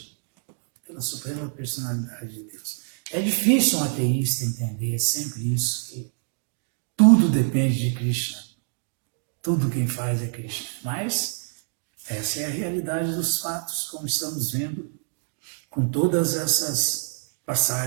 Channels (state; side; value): silent; left; 61 dB below the other